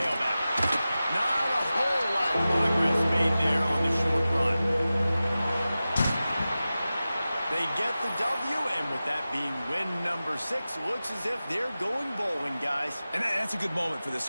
Not a whole lot of progress made there on the short run. They get the W, and with that being win number 6, looks as if they're going bowling, guys. And that's a good moment for this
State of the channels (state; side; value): inverted; both; correlation -0.95